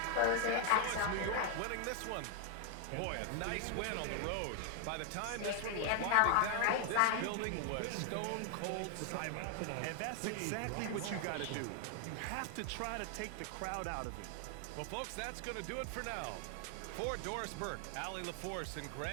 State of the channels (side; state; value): both; different; correlation 0.00